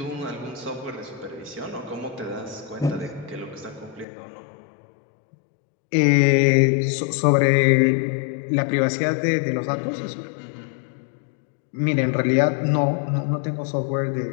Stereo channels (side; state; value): right; drops out; at 4.0 s